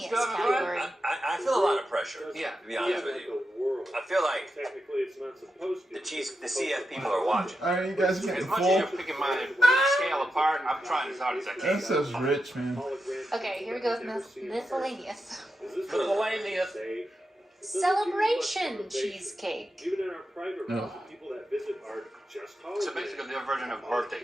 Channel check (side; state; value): both; normal; correlation 0.88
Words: Have fun. category. I feel a lot of pressure, Yeah. to be honest with you. I feel like the CF people are watching. Alright, you guys As getting much as full? you're picking my scale apart, I'm trying as hard as I can. That says rich, man. Okay, here we go with miscellaneous. Miscellaneous. Celebration cheesecake. No. So basically, their version of birthday